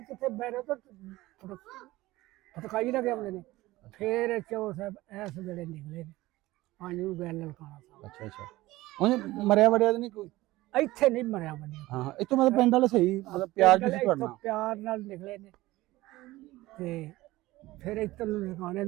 ਕਿੱਥੇ ਬਹਿ ਰਹੇ ਹੋ ਤਾਂ ਫਟਕਾਈ ਲੱਗੇ ਆਉਂਦੇ ਨੇ ਫਿਰ ਚੌਰ ਸਾਹਿਬ ਐਸ ਵੇਲੇ ਨਿਕਲੇ ਨੇ ਪਾਣੀ ਨੂੰ ਗੈਲ ਲਲਕਾਣਾ ਸਾਹਿਬ ਅੱਛਾ ਅੱਛਾ ਉਹਨੇ ਮਰਿਆ ਵੜਿਆ ਤਾਂ ਨਹੀਂ ਕੋਈ ਇੱਥੇ ਨਹੀਂ ਮਰਿਆ ਬੰਦੇ ਹਾਂ ਇੱਥੋਂ ਮਤਲਬ ਪਿੰਡ ਵਾਲੇ ਸਹੀ ਮਤਲਬ ਪਿਆਰ ਜਿਹਾ ਸੀ ਤੁਹਾਡਾ ਪਿਆਰ ਨਾਲ ਨਿਕਲੇ ਨੇ ਤੇ ਫਿਰ ਇੱਧਰ ਨੂੰ ਲਗਾਣੇ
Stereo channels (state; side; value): quieter; left; 18.2 dB